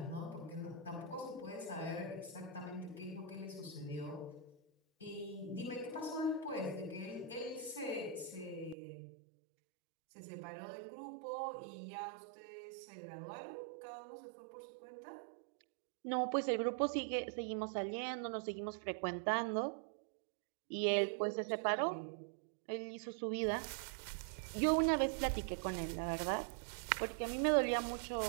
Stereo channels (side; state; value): left; drops out; at 8.8 s